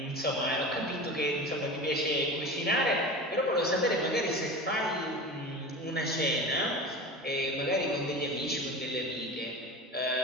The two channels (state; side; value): normal; both; correlation 0.31